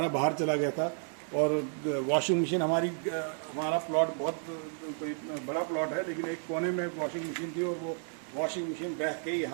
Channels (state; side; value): silent; left; 56 dB below the other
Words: बाहर चला गया था। और वॉशिंग मशीन हमारा प्लॉट बहुत कोई बड़ा प्लॉट है, लेकिन एक कोने में वॉशिंग मशीन थी और वो वॉशिंग मशीन बह के